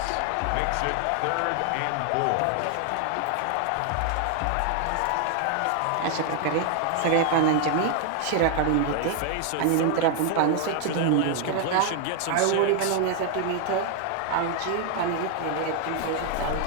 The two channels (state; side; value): different; both; correlation 0.00